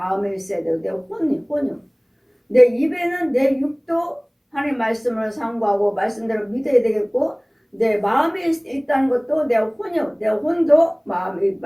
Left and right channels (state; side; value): identical; both; correlation 1.00